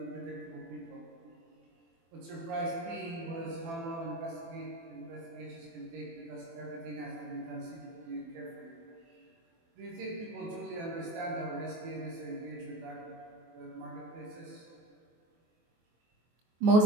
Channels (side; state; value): left; late; 24 ms